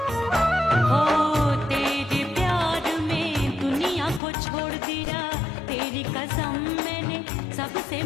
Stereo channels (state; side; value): drops out; right; at 4.2 s